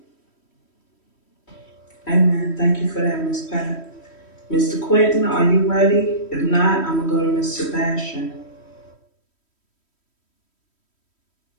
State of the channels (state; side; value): late; right; 3.1 ms